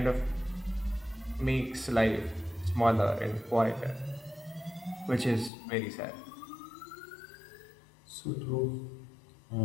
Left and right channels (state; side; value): drops out; right; at 5.5 s